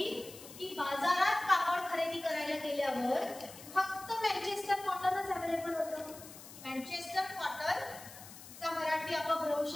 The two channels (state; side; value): noise; left; hiss, 16 dB below the sound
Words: की बाजारात कापड खरेदी करायला गेल्यावर फक्त मँचेस्टर कॉटनच अवेलेबल होतं. मँचेस्टर कॉटनचा मराठी अपभ्रंश